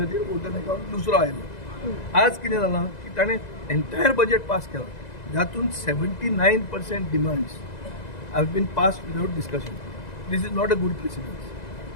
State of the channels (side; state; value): right; late; 2.0 ms